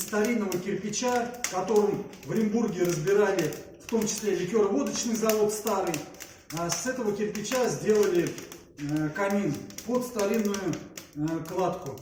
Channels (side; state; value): both; identical; correlation 1.00